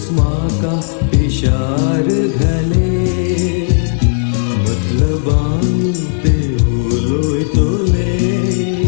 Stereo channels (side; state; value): right; silent; digital silence